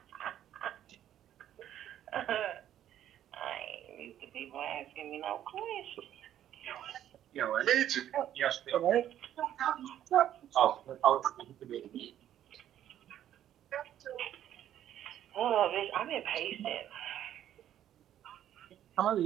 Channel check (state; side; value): quieter; left; 11.3 dB